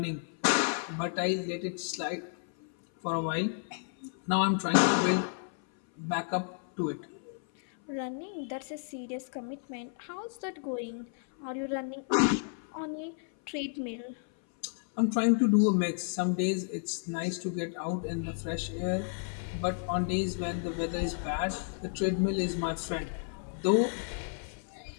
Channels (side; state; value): right; silent; 57 dB below the other